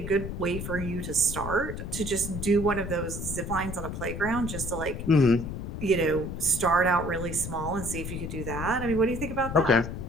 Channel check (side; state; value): left; noise; rumble, 6 dB below the sound